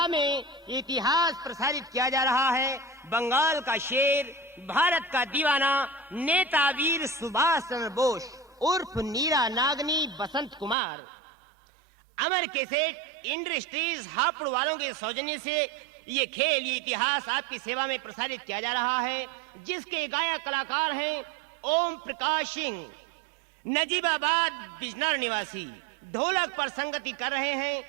में इतिहास प्रसारित किया जा रहा है बंगाल का शेर, भारत का दीवाना, नेता वीर सुभाष चंद्र बोस उर्फ नीरा नागनी बसंत कुमार। अमर कैसेट इंडस्ट्रीज हापुड़ वालों के सौजन्य से ये खेल, ये इतिहास आपकी सेवा में प्रसारित किया जा रहा है, जिसके गायक कलाकार हैं ओम प्रकाश सिंह, नजीबाबाद बिजनौर निवासी। ढोलक पर संगति कर रहे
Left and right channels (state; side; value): drops out; left; at 10.8 s